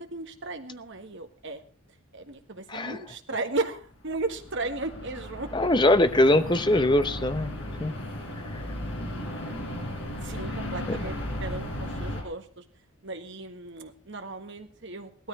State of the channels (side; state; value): both; normal; correlation 0.52